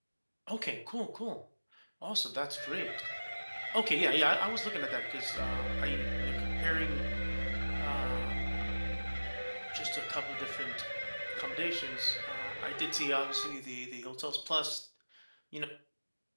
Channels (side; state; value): both; inverted; correlation -1.00